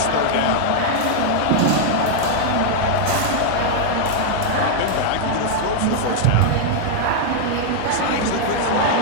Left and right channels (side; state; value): both; different; correlation -0.01